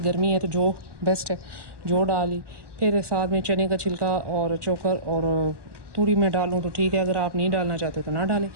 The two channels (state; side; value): late; left; 1.2 ms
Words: है तो जौ बेस्ट है, जौ डाली। फिर साथ में चने का छिलका और चोकर और तूड़ी में डालूँ तो ठीक है, अगर आप नहीं डालना चाहते तो ना डालें।